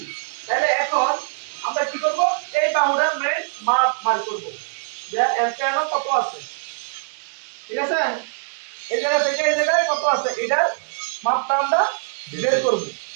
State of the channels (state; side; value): silent; left; digital silence